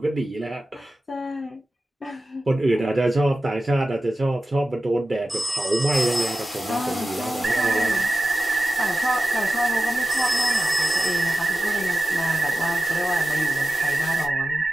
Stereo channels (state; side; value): normal; both; correlation 0.93